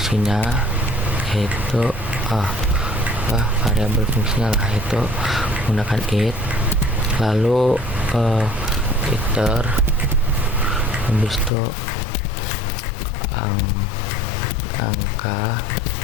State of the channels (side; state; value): right; drops out; at 11.5 s